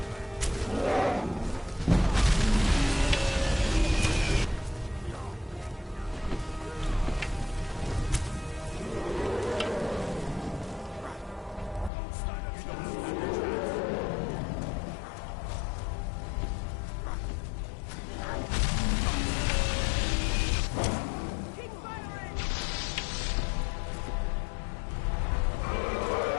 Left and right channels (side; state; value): right; drops out; at 11.9 s